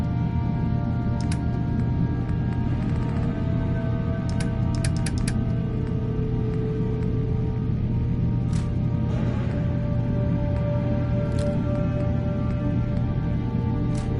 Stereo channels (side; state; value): both; identical; correlation 1.00